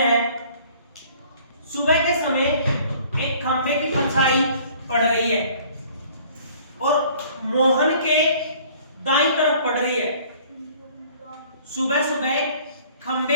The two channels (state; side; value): inverted; both; correlation -0.54